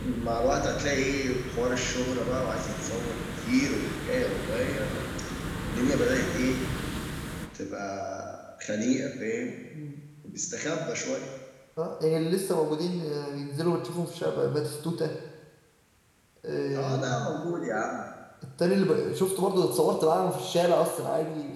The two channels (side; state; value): both; identical; correlation 1.00